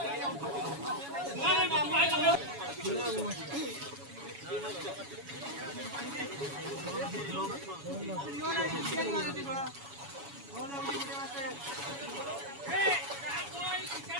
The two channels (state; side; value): late; left; 7.1 ms